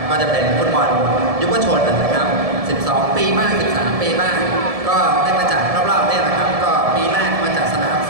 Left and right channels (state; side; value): late; left; 1.7 ms